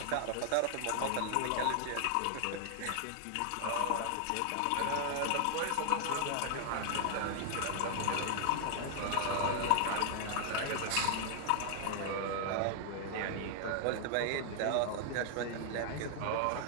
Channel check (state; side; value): different; both; correlation 0.00